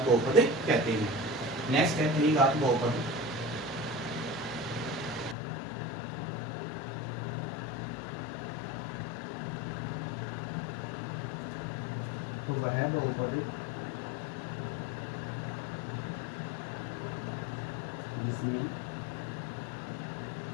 बहुपद कहते हैं। नेक्स्ट है त्रिघात बहुपद। तो वह बहुपद जिसमें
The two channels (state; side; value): drops out; right; at 5.4 s